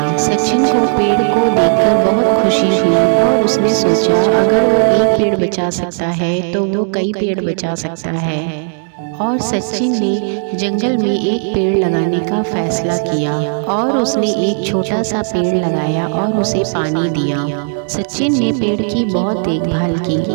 सचिन को पेड़ को देखकर बहुत खुशी हुई और उसने सोचा, अगर वो एक पेड़ बचा सकता है तो वो कई पेड़ बचा सकता है। और सचिन ने जंगल में एक पेड़ लगाने का फैसला किया और उसने एक छोटा सा पेड़ लगाया और उसे पानी दिया। सचिन ने पेड़ की बहुत देखभाल की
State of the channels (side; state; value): left; silent; digital silence